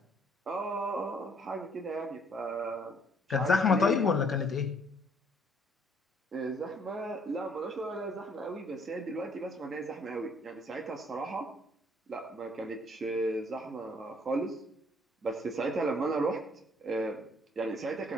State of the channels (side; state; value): both; normal; correlation 0.63